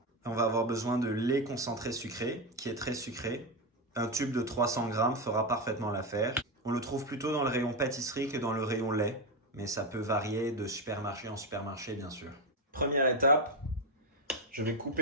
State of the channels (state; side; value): normal; both; correlation 0.09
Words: On va avoir besoin de lait concentré sucré, qui est très sucré. Un tube de 300 grammes fera parfaitement l'affaire. On le trouve plutôt dans le rayon pâtisserie que dans le rayon lait, mais ça peut varier de supermarché en supermarché, bien sûr. Première étape, je vais